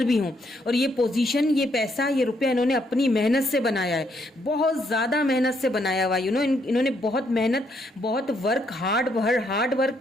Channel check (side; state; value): both; normal; correlation 0.73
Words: भी हों, और ये पोजीशन, ये पैसा, ये रुपया इन्होंने अपनी मेहनत से बनाया है, बहुत ज़्यादा मेहनत से बनाया हुआ। इन्होंने बहुत मेहनत, बहुत हार्ड वर्क